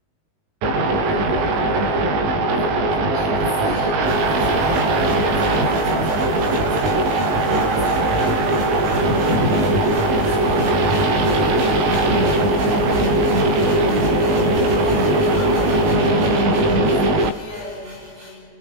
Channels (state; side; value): late; left; 19 ms